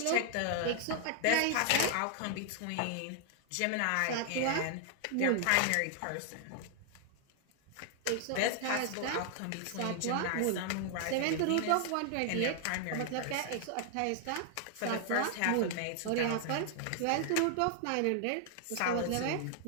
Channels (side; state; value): both; different; correlation 0.00